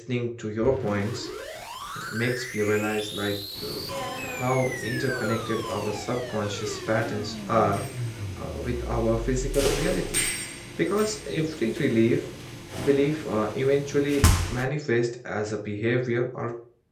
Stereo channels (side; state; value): both; identical; correlation 1.00